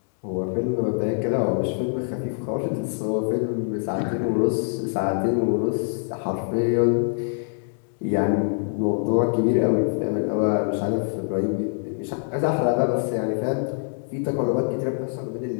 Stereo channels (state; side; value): silent; right; 62 dB below the other